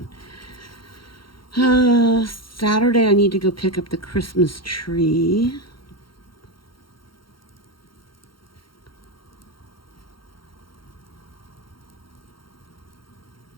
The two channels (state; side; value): late; right; 0.73 ms